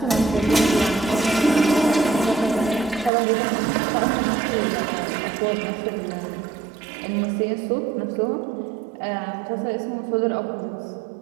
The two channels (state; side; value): drops out; left; at 3.1 s